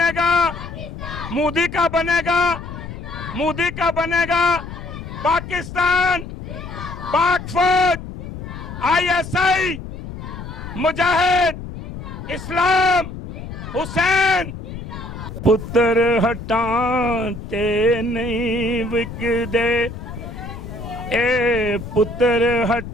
گا، مودی کا بنے گا، مودی کا بنے گا، پاکستان، پاک فوج، آئی ایس آئی، مجاہد، اسلام، حسین۔ پتر ہٹانتے نہیں وکدے، اے پتر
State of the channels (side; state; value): left; noise; rumble, 10 dB below the sound